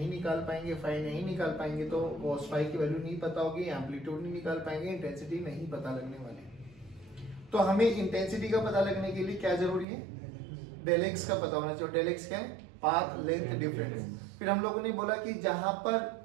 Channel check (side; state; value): left; drops out; at 9.9 s